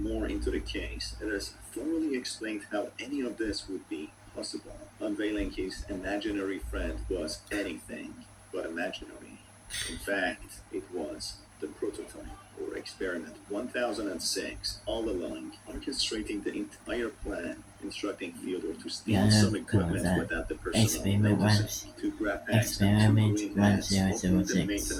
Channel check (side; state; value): both; identical; correlation 1.00